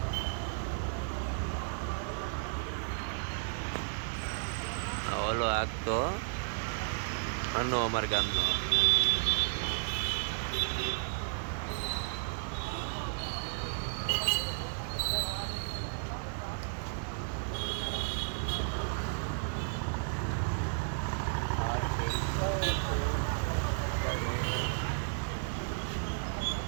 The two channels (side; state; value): left; silent; 55 dB below the other